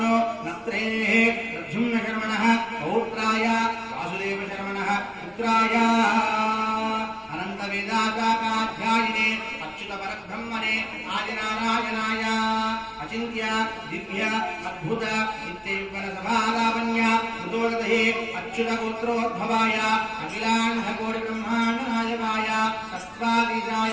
नत्रेः प्रद्युम्नशर्मणः पौत्राय वासुदेवशर्मणः पुत्राय अनन्तवेदाकाध्यायिने अच्युतपरब्रह्मणे आदिनारायणाय अचिन्त्य दिव्य अद्भुत नित्ययुगलसभालावण्य हृदोदये अच्युतगोत्रोद्भवाय अखिलाण्डकोटिब्रह्माण्डनायकाय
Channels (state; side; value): identical; both; correlation 1.00